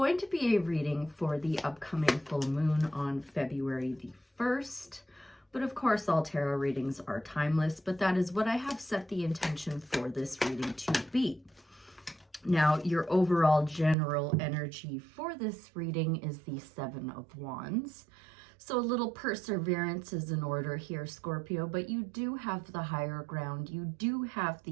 to be a reading for the upcoming full moon on February the 1st. But of course, all tarot readings are timeless, but that is what I have set the intention for this reading to be. Now, your overall general energy for this reading is the Seven of Wands. So a little perseverance is in order here, Scorpio, but you do have the higher ground. You do have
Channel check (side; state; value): left; drops out; at 14.0 s